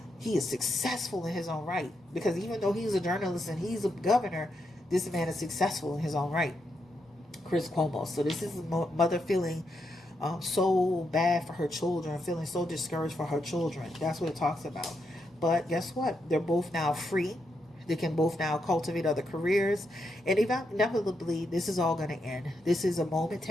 he is successful in his own right. Because even though he's a journalist and he's a governor, this man is successful in his own right. Chris Cuomo. So this is a mother feeling so bad for her children, feeling so discouraged for her children. That's what it talks about. But guess what? They're both now free. They can both now cultivate other careers. And inevitably, this is all going to end. This is a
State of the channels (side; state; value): both; normal; correlation 0.82